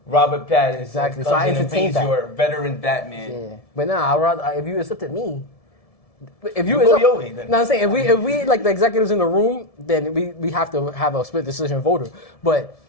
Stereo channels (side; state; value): right; late; 1.7 ms